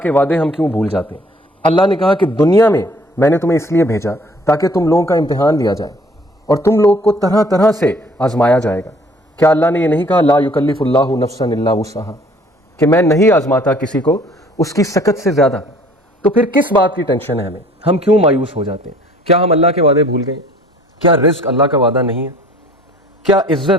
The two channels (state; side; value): normal; both; correlation 0.55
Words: کے وعدے ہم کیوں بھول جاتے ہیں؟ اللہ نے کہا کہ دنیا میں نے تمہیں اس لیے بھیجا تاکہ تم لوگوں کا امتحان لیا جائے اور تم لوگ کو طرح طرح سے آزمایا جائے گا. کیا اللہ نے یہ نہیں کہا لا یکلف اللہ نفسا الا وسعہا کہ میں نہیں آزماتا کسی کو اس کی سکت سے زیادہ؟ تو پھر کس بات کی ٹینشن ہے ہمیں؟ ہم کیوں مایوس ہو جاتے ہیں؟ کیا ہم اللہ کے وعدے بھول گئے؟ کیا رزق اللہ کا وعدہ نہیں ہے؟ کیا